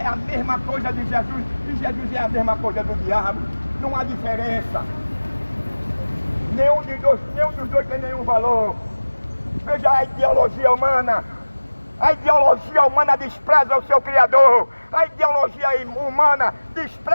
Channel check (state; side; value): inverted; both; correlation -1.00